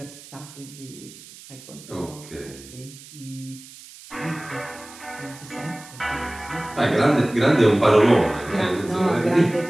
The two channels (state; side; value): noise; right; hiss, 19 dB below the sound